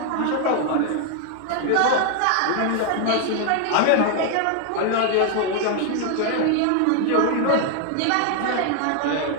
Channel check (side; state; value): both; different; correlation 0.00